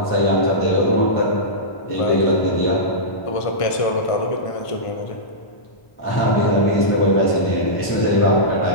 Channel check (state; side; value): late; right; 1.1 ms